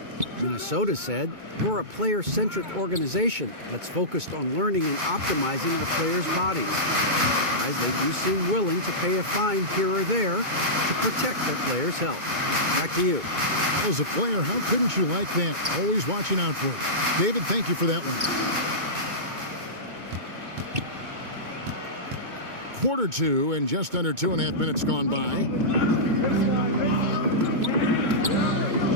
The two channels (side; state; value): left; late; 2.2 ms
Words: Minnesota said, we're a player-centric organization that's focused on learning and optimizing our players' bodies. Guys, they do seem willing to pay a fine here or there to protect their players' health. Back to you. As a player, how couldn't you like that? Always watching out for it. David, thank you for that one. Quarter 2 and just under 2.5 minutes gone by.